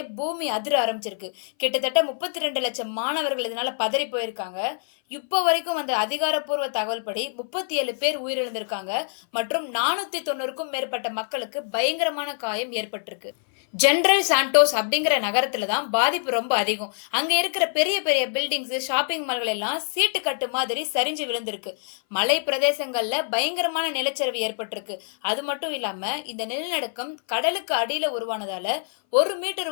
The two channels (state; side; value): silent; right; 59 dB below the other